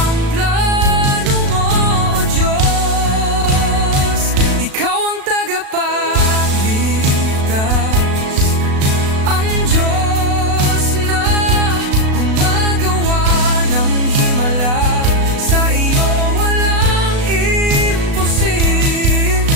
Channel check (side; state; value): left; late; 36 ms